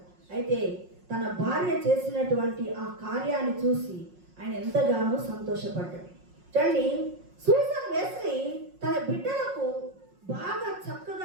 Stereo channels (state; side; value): late; left; 5.5 ms